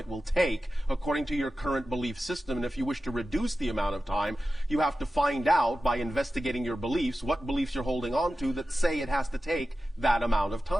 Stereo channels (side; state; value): both; normal; correlation 0.93